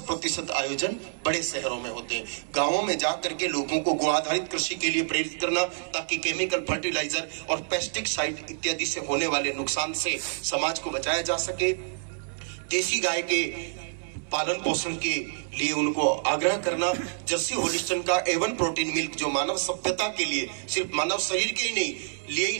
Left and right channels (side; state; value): left; silent; 60 dB below the other